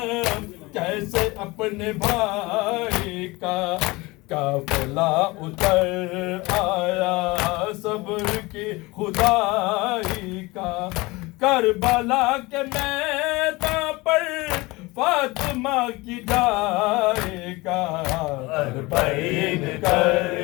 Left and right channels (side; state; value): right; quieter; 22.8 dB